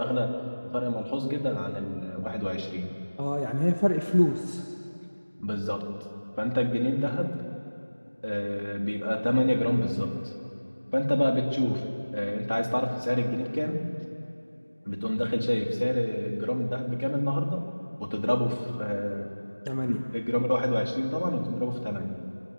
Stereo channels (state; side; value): inverted; both; correlation -1.00